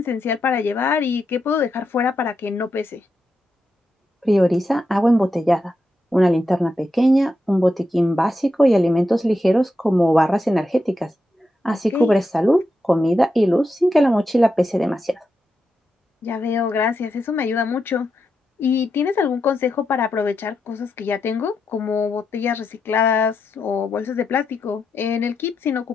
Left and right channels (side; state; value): both; normal; correlation 0.85